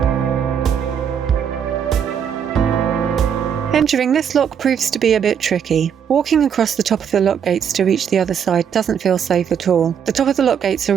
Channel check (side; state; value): left; quieter; 7.9 dB